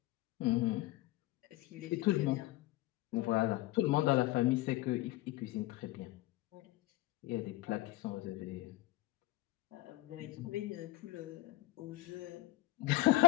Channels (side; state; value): right; quieter; 17.8 dB